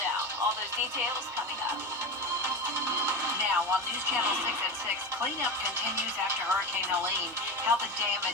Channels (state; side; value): normal; both; correlation 0.22